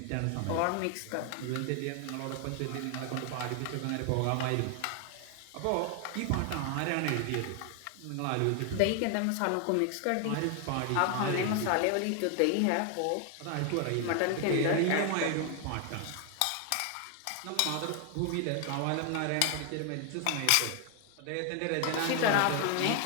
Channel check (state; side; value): different; both; correlation 0.00